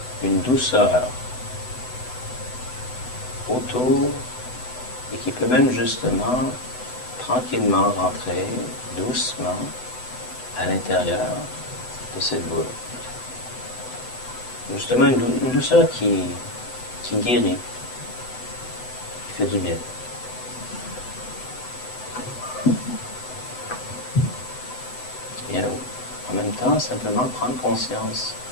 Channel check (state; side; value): late; right; 8.0 ms